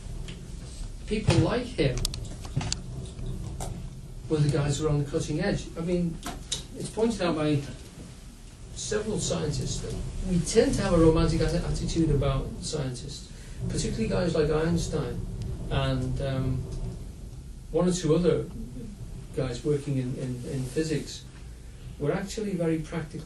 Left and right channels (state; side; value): identical; both; correlation 1.00